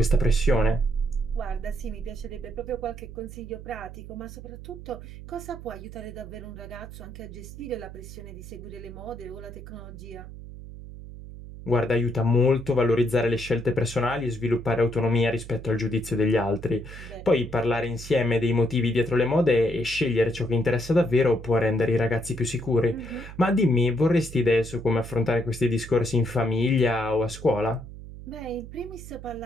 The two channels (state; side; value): noise; right; hum, 13 dB below the sound